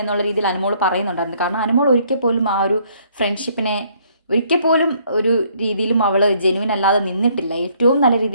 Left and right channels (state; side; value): inverted; both; correlation -0.65